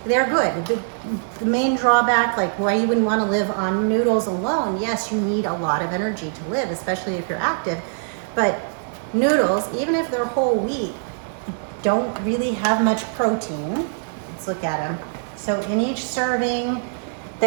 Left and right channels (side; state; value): left; silent; digital silence